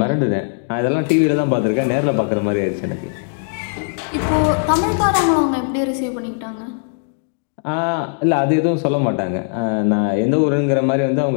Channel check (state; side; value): silent; right; 67 dB below the other